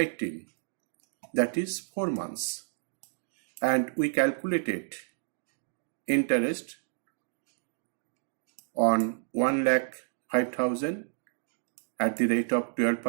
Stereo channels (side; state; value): left; silent; digital silence